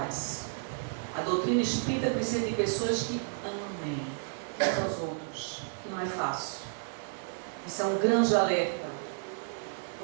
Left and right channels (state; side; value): silent; left; 57 dB below the other